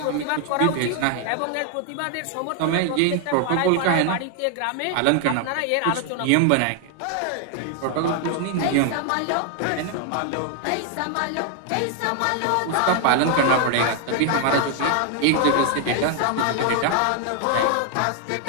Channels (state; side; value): different; both; correlation 0.00